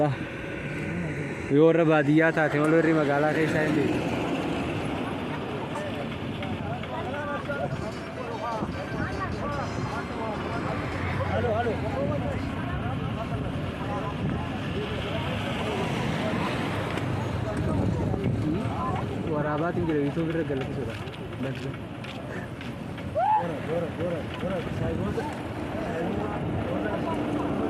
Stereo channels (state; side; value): identical; both; correlation 1.00